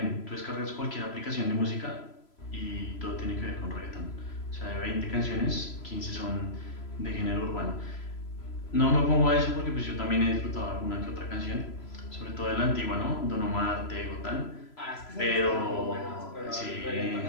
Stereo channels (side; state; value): right; late; 3.0 ms